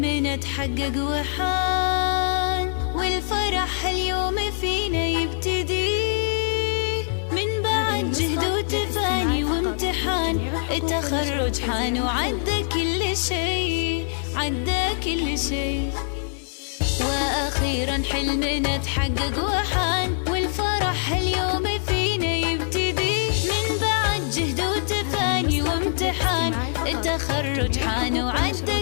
اتحقق وحان، والفرح اليوم فينا يبتدي من بعد جهد وتفاني وامتحان. التخرج حان وعدى كل شي، عدى كل شي. وأخيرا حلمنا اتحقق وحان، والفرح اليوم فينا يبتدي من بعد جهد وتفاني وامتحان. التخرج حان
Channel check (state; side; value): silent; right; digital silence